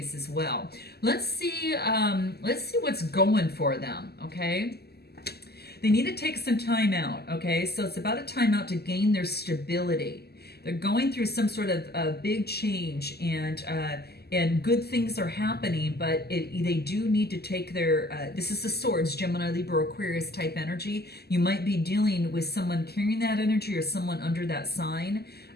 as well. Let's see what's going for them. Okay. They need to take some time out. Okay. So it's about a time out to gain their stability. They're going through some sort of big change, and good things are happening, but they do need to take their, this is the Swords, Gemini, Libra, Aquarius type energy. You might be dealing with someone carrying that energy or someone under that sign,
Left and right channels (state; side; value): late; right; 0.46 ms